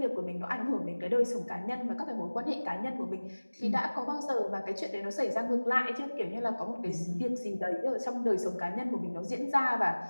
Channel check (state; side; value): inverted; both; correlation -1.00